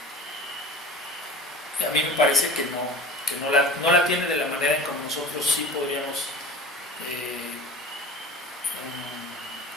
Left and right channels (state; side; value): normal; both; correlation 0.38